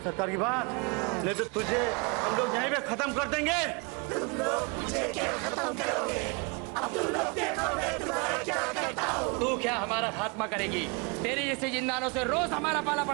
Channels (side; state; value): left; quieter; 31.3 dB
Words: सरकार की बात, नहीं तो तुझे हम लोग यहीं पे खत्म कर देंगे। तुम लोग मुझे क्या खत्म करोगे? अब तुम लोग देखो मैं तुम्हारा क्या करता हूँ। तू क्या हमारा खात्मा करेगी? तेरे जैसे जिंदानों से रोज हमारा पाला